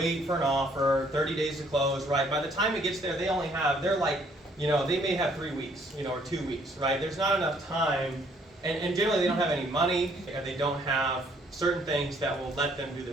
for an offer, 30 days to close, right? By the time it gets there, they may have 3 weeks, or 2 weeks, right? There's not enough time, and generally they don't have any money, and they don't have certain things that will let them do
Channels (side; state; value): both; normal; correlation 0.64